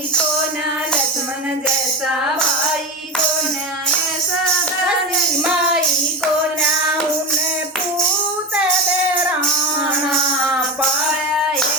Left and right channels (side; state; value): both; normal; correlation 0.20